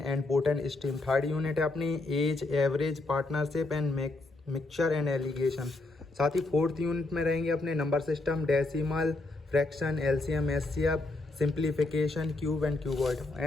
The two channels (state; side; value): quieter; right; 3.0 dB